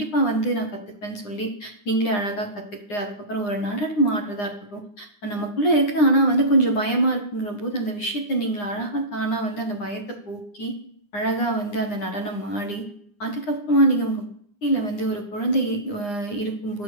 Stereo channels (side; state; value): right; late; 9.8 ms